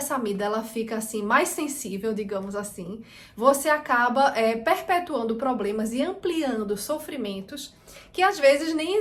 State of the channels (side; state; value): both; identical; correlation 1.00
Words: amígdala fica assim mais sensível, digamos assim, você acaba perpetuando problemas e ampliando sofrimentos que às vezes nem